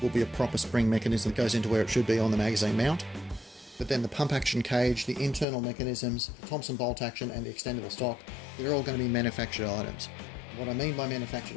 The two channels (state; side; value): drops out; right; at 5.5 s